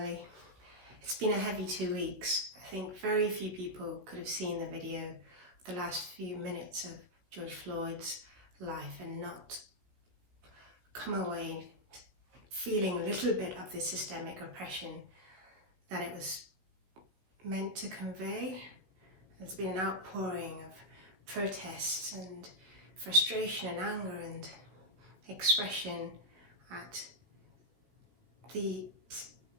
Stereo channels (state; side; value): late; left; 16 ms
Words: It's been a heavy 2 weeks. I think very few people could have seen the video of the last few minutes of George Floyd's life and not come away feeling a little bit of the systemic oppression that it was meant to convey. There's been an outpouring of protests and frustration and anger and expression at the